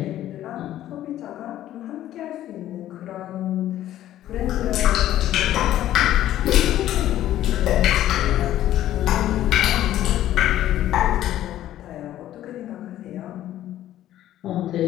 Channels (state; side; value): quieter; right; 13.0 dB